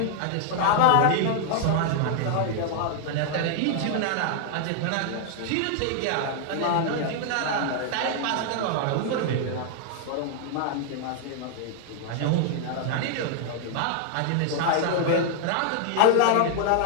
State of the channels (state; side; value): different; both; correlation 0.00